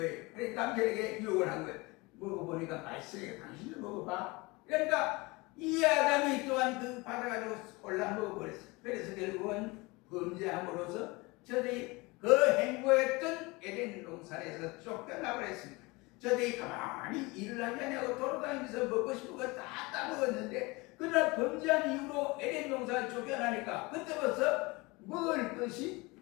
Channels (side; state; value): right; quieter; 24.5 dB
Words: 그러니까 남편에게 유혹을 한 거예요. 먹어보니까 맛있으니까 당신도 먹어봐. 그러니까 이 아담이 또한 그 받아가지고 올라 먹어버렸어요. 그래서 결국은 범죄함으로써 저들이 그 행보했던 에덴 동산에서 쫓겨나버렸습니다. 저들이 가만히 일을 하지 않냐고 돌아다니면서 먹고 싶은 거 다 따먹었는데 그러나 범죄한 이후로 에덴 동산에 쫓겨나니까 그때부터 먹을 것이